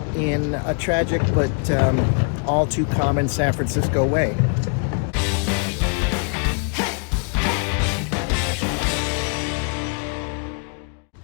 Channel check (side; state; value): right; quieter; 37.8 dB